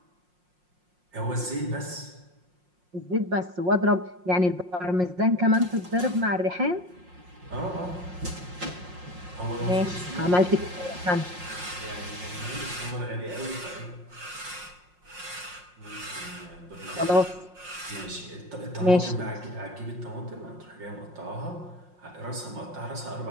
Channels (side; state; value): left; late; 5.6 ms